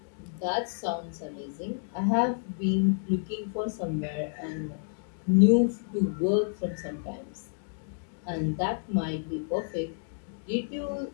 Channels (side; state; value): right; silent; digital silence